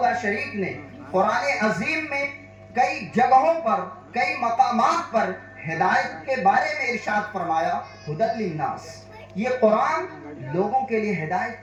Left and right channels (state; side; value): identical; both; correlation 1.00